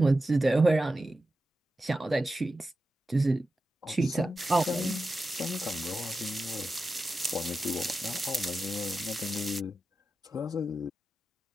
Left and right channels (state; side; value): normal; both; correlation 0.92